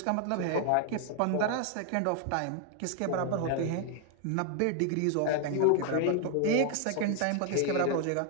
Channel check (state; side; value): different; both; correlation 0.00